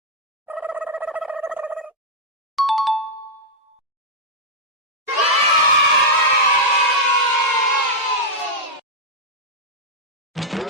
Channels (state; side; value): normal; both; correlation -0.04